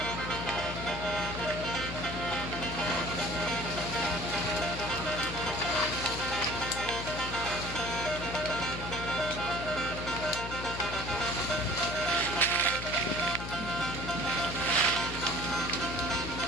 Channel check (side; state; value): left; noise; hum, 8 dB below the sound